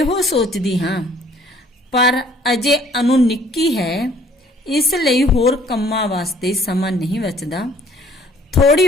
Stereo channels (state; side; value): normal; both; correlation 0.58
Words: ਸੋਚਦੀ ਹਾਂ, ਪਰ ਅਜੇ ਅਨੂ ਨਿੱਕੀ ਹੈ, ਇਸ ਲਈ ਹੋਰ ਕੰਮਾਂ ਵਾਸਤੇ ਸਮਾਂ ਨਹੀਂ ਬਚਦਾ,